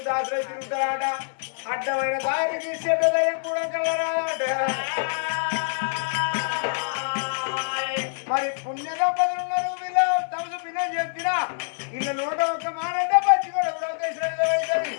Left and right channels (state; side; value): silent; right; digital silence